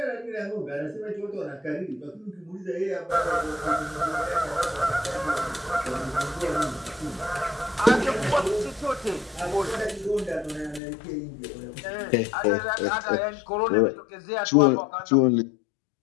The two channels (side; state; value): right; drops out; at 10.8 s